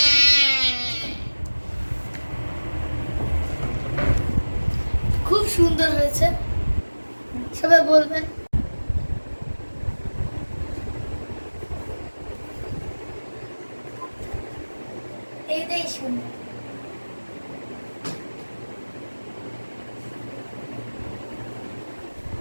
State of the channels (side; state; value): both; inverted; correlation -1.00